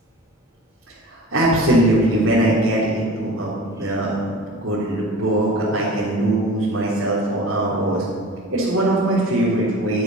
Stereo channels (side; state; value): both; normal; correlation 0.39